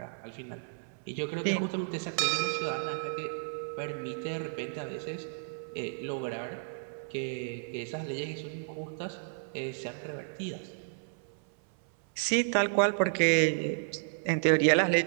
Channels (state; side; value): silent; left; 56 dB below the other